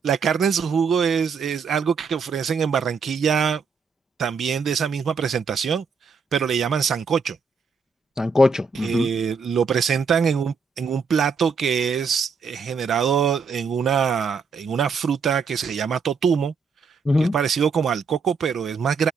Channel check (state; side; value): quieter; left; 5.1 dB